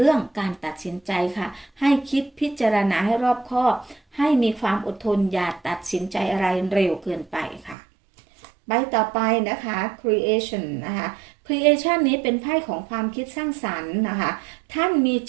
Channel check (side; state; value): left; drops out; at 7.8 s